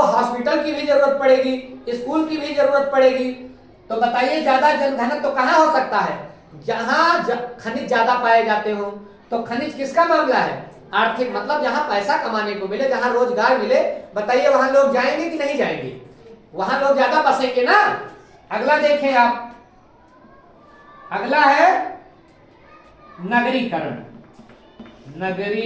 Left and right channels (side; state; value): both; identical; correlation 1.00